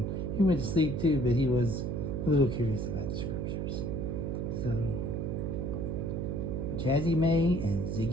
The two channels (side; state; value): right; noise; hum, 2 dB below the sound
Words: he went to sleep too, but he was a little curious about the scriptures. So, Jazzy May and